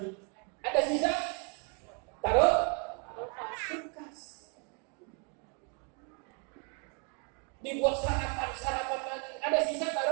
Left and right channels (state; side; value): quieter; left; 36.8 dB